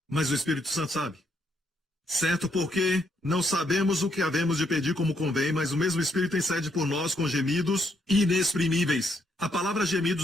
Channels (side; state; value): both; normal; correlation 0.74